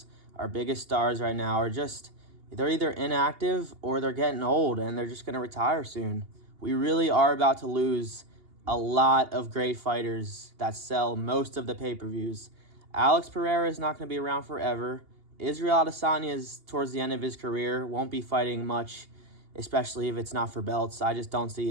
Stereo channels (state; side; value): late; left; 2.8 ms